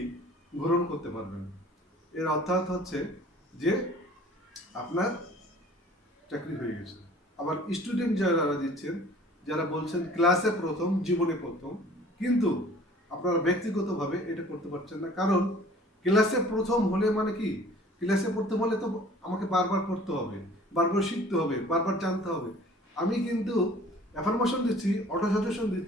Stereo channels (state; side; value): normal; both; correlation 0.50